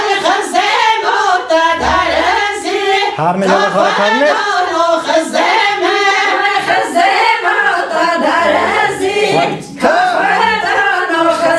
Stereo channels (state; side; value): identical; both; correlation 1.00